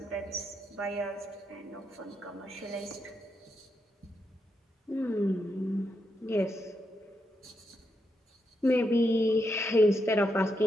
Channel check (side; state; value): both; normal; correlation 0.82